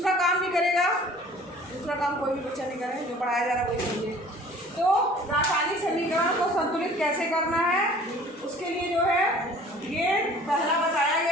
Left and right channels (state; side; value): normal; both; correlation 0.49